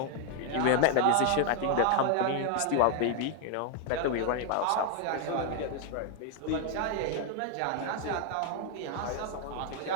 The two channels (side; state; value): both; different; correlation 0.00